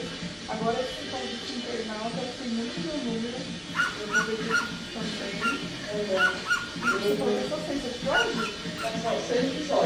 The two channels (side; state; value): both; identical; correlation 1.00